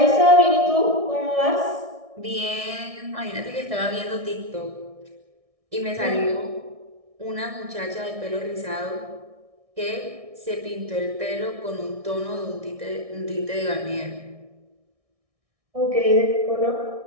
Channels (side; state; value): left; late; 1.6 ms